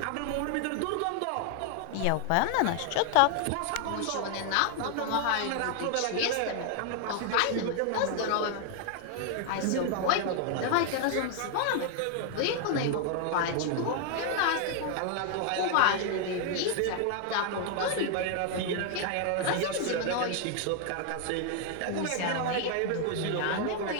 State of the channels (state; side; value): different; both; correlation 0.00